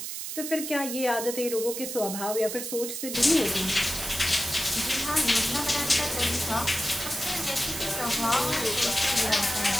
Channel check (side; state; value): right; noise; hiss, 6 dB below the sound